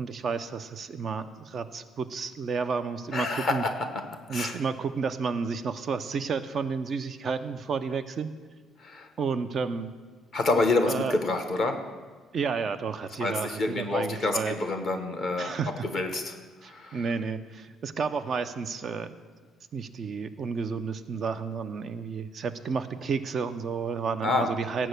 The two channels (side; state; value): both; normal; correlation 0.71